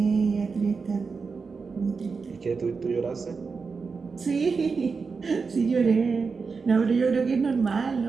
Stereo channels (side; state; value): left; quieter; 4.9 dB